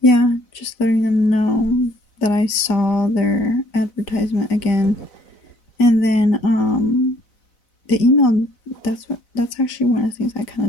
just letting them know that I saw their advertisement again. And then, the email, that's actually one of the things I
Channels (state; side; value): late; right; 4.0 ms